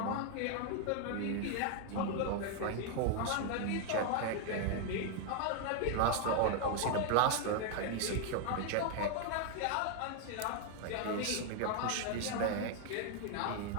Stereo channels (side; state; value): both; different; correlation 0.00